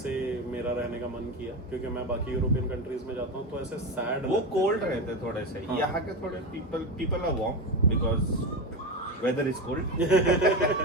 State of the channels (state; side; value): normal; both; correlation 0.18